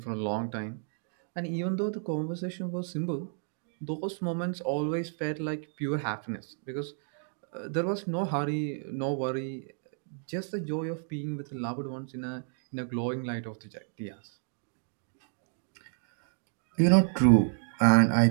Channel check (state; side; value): silent; left; 57 dB below the other